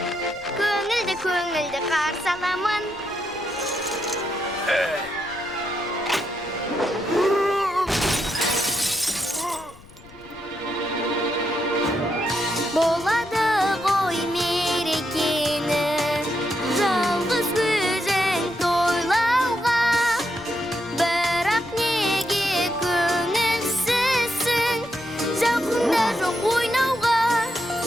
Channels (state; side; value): noise; left; rumble, 23 dB below the sound